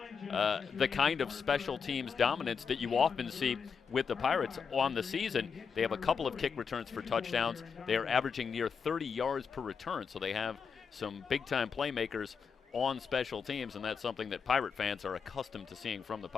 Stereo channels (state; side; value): quieter; right; 6.1 dB